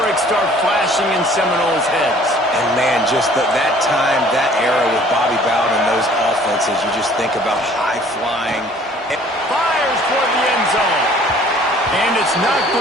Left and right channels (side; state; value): both; normal; correlation 0.54